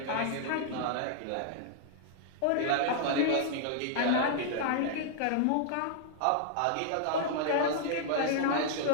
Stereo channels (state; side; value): different; both; correlation -0.01